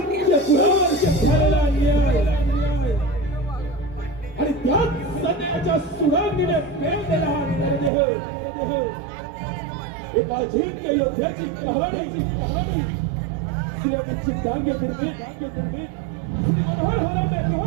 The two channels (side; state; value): left; drops out; at 7.9 s